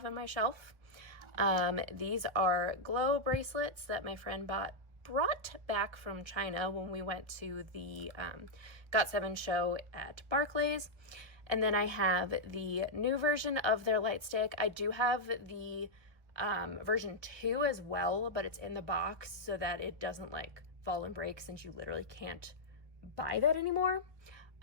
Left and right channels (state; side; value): late; left; 1.3 ms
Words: on my shelf. These are glow bracelets that my friend brought back from China when we went to the GOT7 show at Barclays. And then I have the new version of their light stick. I do have the version 2 as well, but it's in the box so that it doesn't like fall and break, since you literally can't buy that anymore.